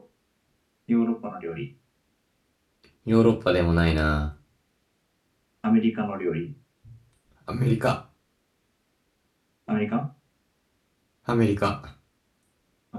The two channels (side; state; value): both; identical; correlation 1.00